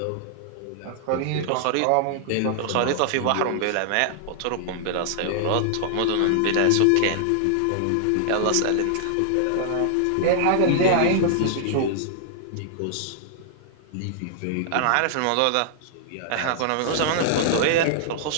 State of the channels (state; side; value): different; both; correlation -0.01